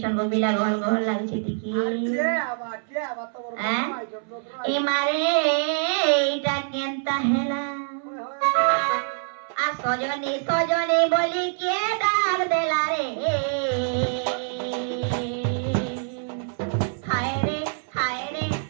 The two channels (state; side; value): silent; left; 62 dB below the other